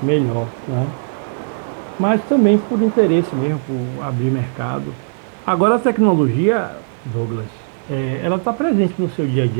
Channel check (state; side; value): silent; left; digital silence